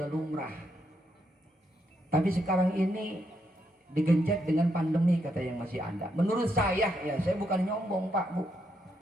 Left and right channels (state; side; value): normal; both; correlation 0.78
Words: lumrah, tapi sekarang ini digencet dengan pandemi kata yang masih ada. Menurut saya ya, saya bukan nyombong Pak Bu,